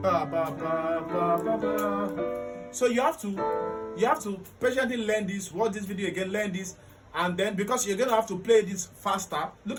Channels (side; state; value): both; identical; correlation 1.00